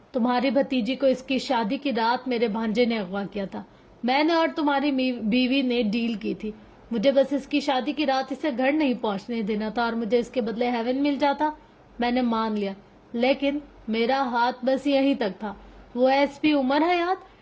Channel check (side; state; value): both; identical; correlation 1.00